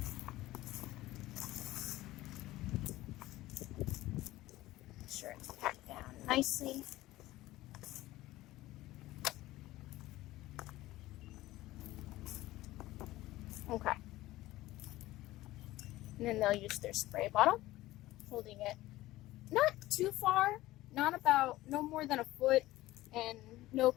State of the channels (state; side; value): quieter; right; 17.0 dB